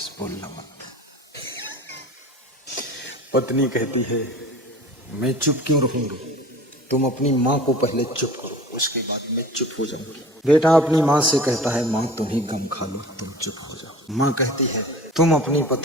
बोलना मत। पत्नी कहती है मैं चुप क्यों रहूंगी, तुम अपनी माँ को पहले चुप करो, उसके बाद मैं चुप हो जाऊंगी। बेटा अपनी माँ से कहता है माँ तुम ही गम खा लो, तुम चुप हो जाओ। माँ कहती है तुम अपनी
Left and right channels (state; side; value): normal; both; correlation 0.41